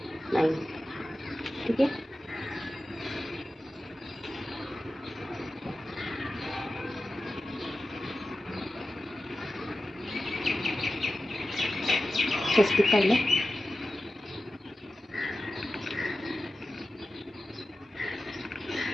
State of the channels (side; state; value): both; normal; correlation 0.93